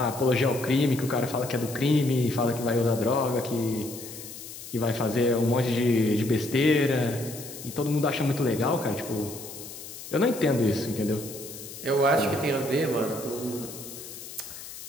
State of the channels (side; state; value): left; noise; hiss, 13 dB below the sound